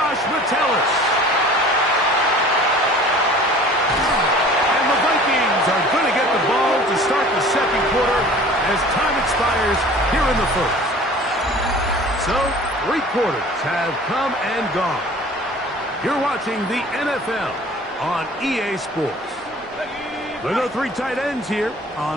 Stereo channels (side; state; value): both; normal; correlation 0.46